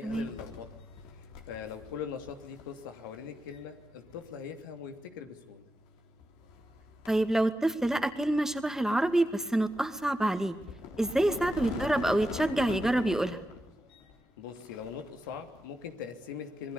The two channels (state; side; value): normal; both; correlation 0.88